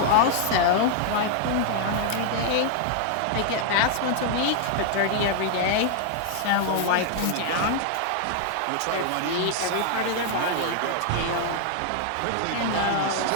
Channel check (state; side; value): different; both; correlation -0.01